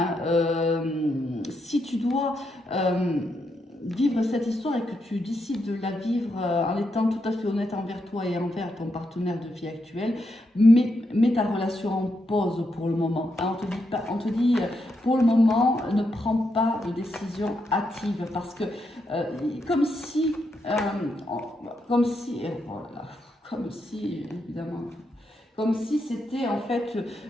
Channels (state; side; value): normal; both; correlation 0.82